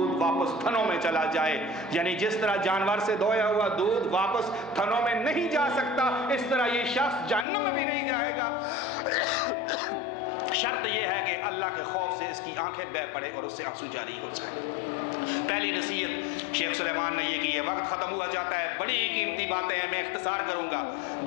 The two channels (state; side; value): drops out; right; at 7.5 s